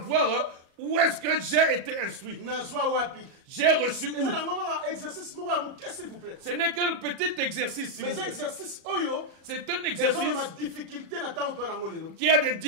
où est-ce que j'ai été instruit. J'ai reçu où? Ce n'est qu'un petit exercice. C'est un exercice qui a des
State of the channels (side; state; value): left; late; 37 ms